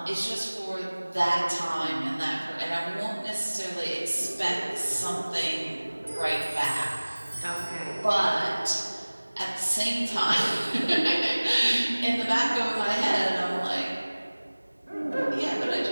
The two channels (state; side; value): inverted; both; correlation -1.00